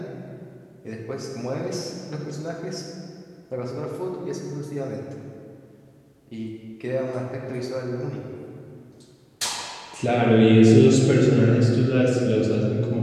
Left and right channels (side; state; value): both; identical; correlation 1.00